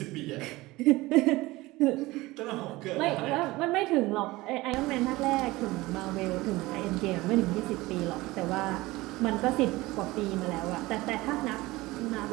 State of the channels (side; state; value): left; quieter; 20.0 dB